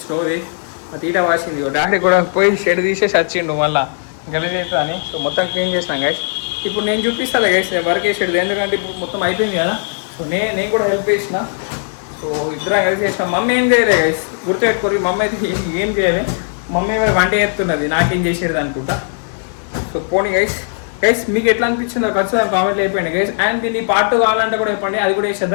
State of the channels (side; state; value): right; silent; digital silence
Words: స్టోరీ తీట వాసింది. డాడీ కూడా పోయి షెడ్ తీసేసి వచ్చిండు మళ్ళీ గెలిచేస్తా అని. సో మొత్తం క్లీన్ చేసినాం గైస్. ఇప్పుడు నేను చూపిస్తాను గైస్ నేను వర్క్ చేసేది, ఎందుకంటే ఇప్పుడు మొత్తం అయిపోయింది కదా. సో నేను కూడా హెల్ప్ చేసిన. సో ఇద్దరం కలిసి చేసినాం. మమ్మీ ఏం చేయలే గైస్, గుర్తుపెట్టుకోరు. మమ్మీ అయితే ఏం చేయలే. మమ్మీ మరి వంట చేస్తున్నది, నాకేం చేసేది అనుకుంటా. సో పోనీ గైస్. గైస్ మీకు ఎట్లా అనిపించిందో ఖచ్చితంగా కామెంట్లు అయిపోయింది గైస్. అండ్ దీన్ని పార్ట్ కావాలంటే కూడా చెప్పండి, అది కూడా